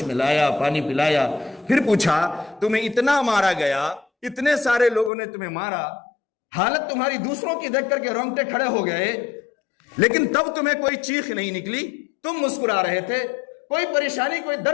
میں لایا، پانی پلایا، پھر پوچھا تمہیں اتنا مارا گیا، اتنے سارے لوگوں نے تمہیں مارا، حالت تمہاری دوسروں کی دیکھ کر کے رونگٹے کھڑے ہو گئے، لیکن تب تمہیں کوئی چیخ نہیں نکلی، تم مسکرا رہے تھے، کوئی پریشانی، کوئی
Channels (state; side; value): drops out; right; at 5.1 s